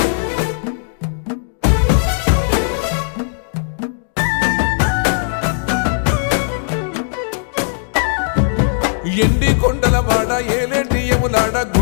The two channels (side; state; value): right; silent; 64 dB below the other